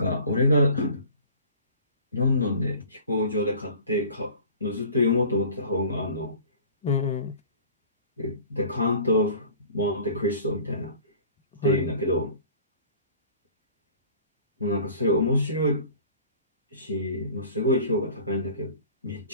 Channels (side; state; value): both; inverted; correlation -0.45